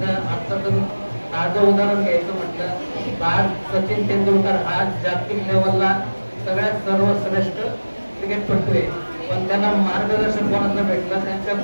आता तुम्ही ताजं उदाहरण घ्यायचं म्हटलं, आज सचिन तेंडुलकर आज जागतिक लेवलला सगळ्यात सर्वश्रेष्ठ क्रिकेटपटू आहे. पण त्यांना मार्गदर्शन कोणाचं भेटलं? त्यांच्या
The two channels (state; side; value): inverted; both; correlation -1.00